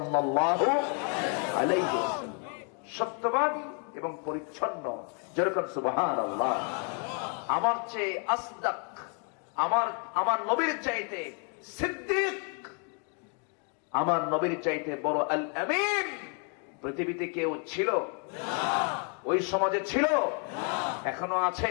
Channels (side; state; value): right; quieter; 39.4 dB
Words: আলাইহি ওয়াসাল্লাম। সত্যবাদী এবং পরিচ্ছন্ন, যেরকম সুবহানাল্লাহ। আমার চেয়ে আসদাক, আমার নবীর চাইতে সিদ্দিক, আমার নবীর চাইতে বড় আল আমিন পৃথিবীতে কেউ ছিল? ওই সমাজে ছিল? এখনো